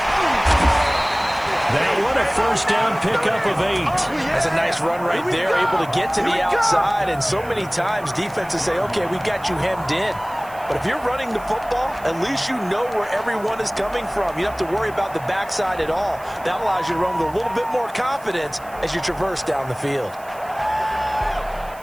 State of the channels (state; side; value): noise; right; hiss, 23 dB below the sound